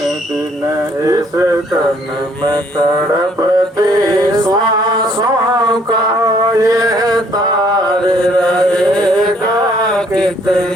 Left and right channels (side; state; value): both; normal; correlation 0.64